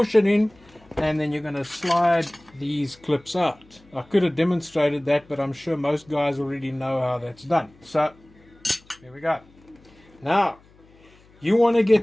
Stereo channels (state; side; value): noise; left; hum, 28 dB below the sound